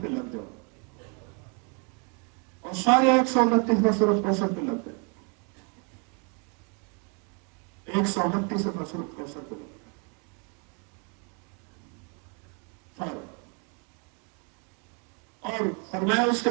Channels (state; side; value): quieter; left; 35.8 dB